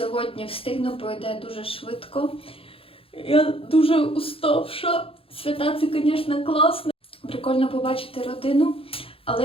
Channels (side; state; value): right; late; 0.27 ms